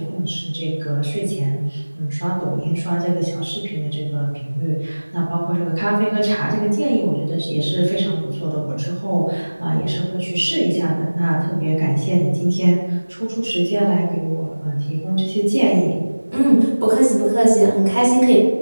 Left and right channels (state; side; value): inverted; both; correlation -1.00